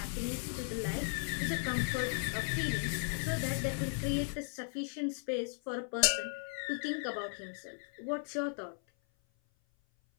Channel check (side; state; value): right; silent; 54 dB below the other